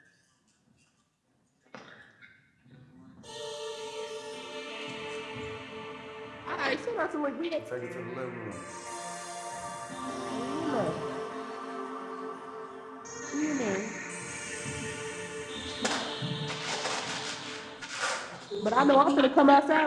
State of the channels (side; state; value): both; identical; correlation 1.00